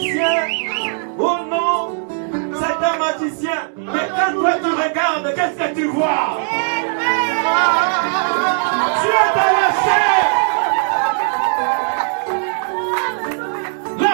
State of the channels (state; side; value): silent; left; digital silence